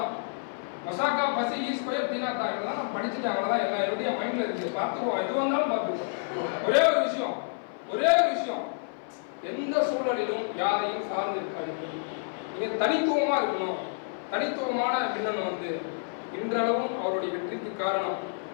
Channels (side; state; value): right; silent; 56 dB below the other